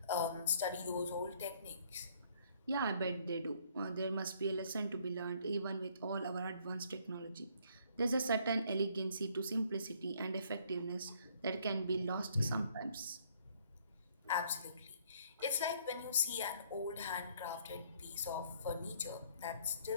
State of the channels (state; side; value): inverted; both; correlation -0.63